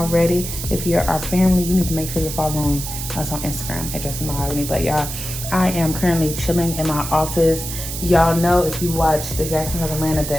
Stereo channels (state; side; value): noise; right; hiss, 7 dB below the sound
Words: If you're our family, you need to make sure you're following us on Instagram at Justin and MaHogany. But y'all, I am currently chilling in my office. Y'all know if you watch The Jacksons of Atlanta